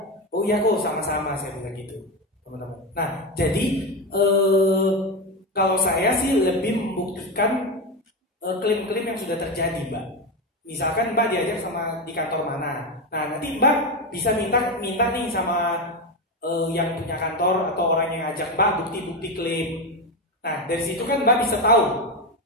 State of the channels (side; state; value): both; normal; correlation 0.14